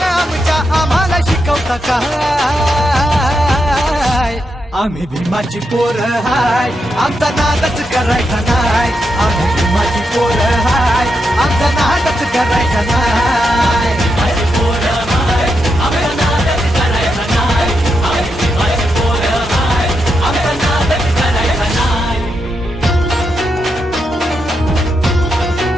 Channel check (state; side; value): normal; both; correlation 0.84